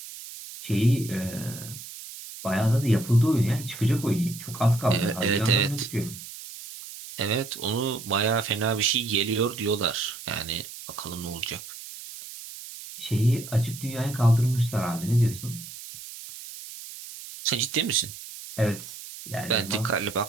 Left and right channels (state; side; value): noise; right; hiss, 13 dB below the sound